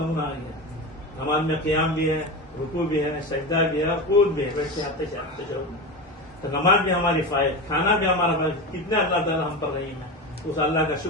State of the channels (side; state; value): both; normal; correlation 0.23